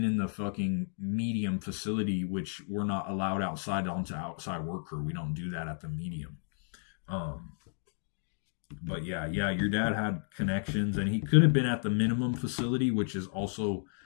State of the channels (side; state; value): right; silent; digital silence